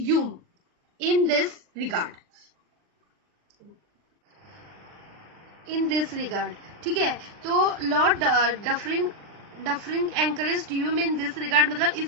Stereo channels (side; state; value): left; late; 39 ms